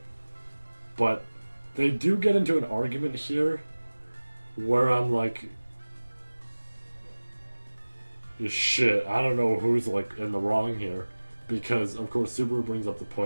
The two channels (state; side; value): inverted; both; correlation -1.00